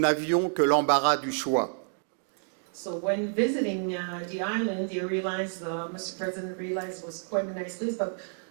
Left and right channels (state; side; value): silent; left; digital silence